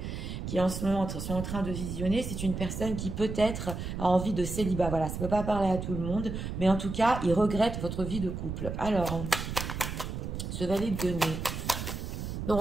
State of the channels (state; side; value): noise; right; rumble, 5 dB below the sound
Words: en ce moment sont en train de visionner, c'est une personne qui peut-être a envie de célibat. Voilà, ça ne peut pas parler à tout le monde, mais en tout cas, il regrette votre vie de couple. Alors, ce valet de denier. Donc,